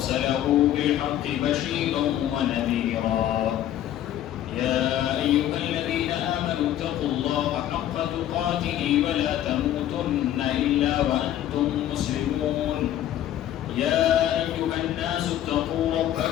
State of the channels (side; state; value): right; quieter; 12.0 dB